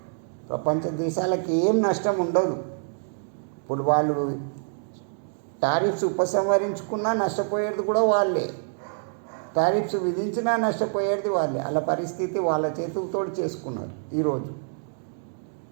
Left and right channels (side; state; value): left; silent; digital silence